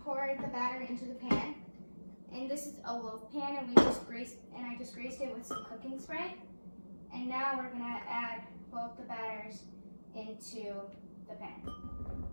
pour the batter into the pan, and this is a loaf pan, and I just greased it with some cooking spray. And now we're going to add both the batters into the pan.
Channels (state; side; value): inverted; both; correlation -1.00